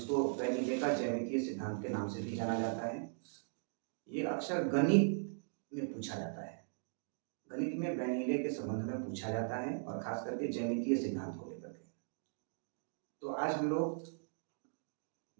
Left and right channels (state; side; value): silent; left; digital silence